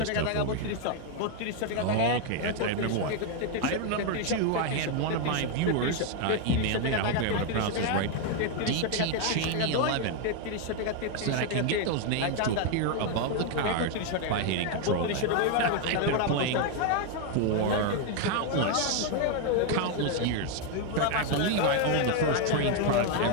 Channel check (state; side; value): different; both; correlation 0.01